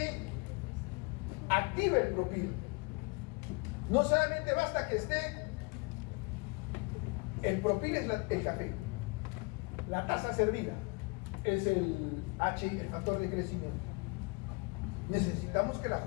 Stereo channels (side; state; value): right; quieter; 29.7 dB